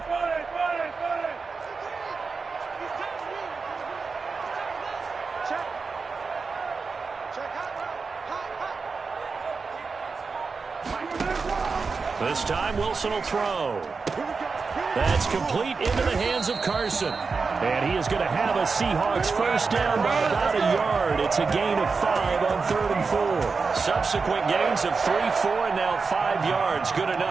This time Wilson will throw. That's complete into the hands of Carson. And he is going to have a Seahawks first down by about a yard. It's a gain of 5 on 3rd and 4. Subsequent gains of 3, 4, and now 5 yards. Good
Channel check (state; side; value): quieter; left; 4.7 dB